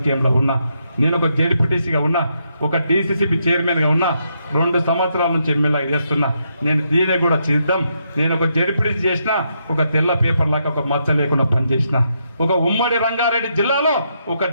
ఉన్నా. నేను ఒక జెడ్పీటీసీగా ఉన్నా, ఒక డీసీసీబీ చైర్మన్గా ఉన్నా, 2 సంవత్సరాల నుంచి ఎమ్మెల్యే చేస్తున్నా. నేను దీనే కూడా సిద్ధం. నేను ఒక జెడ్పీటీసీ చేసిన, ఒక తెల్ల పేపర్ లాగా ఒక మచ్చ లేకుండా పనిచేసిన, ఒక ఉమ్మడి రంగారెడ్డి జిల్లాలో ఒక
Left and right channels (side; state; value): both; inverted; correlation -0.79